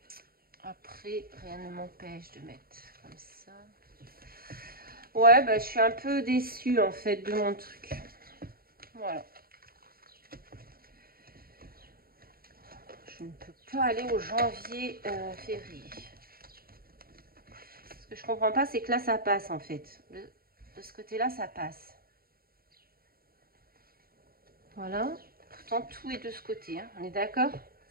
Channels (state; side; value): late; left; 0.43 ms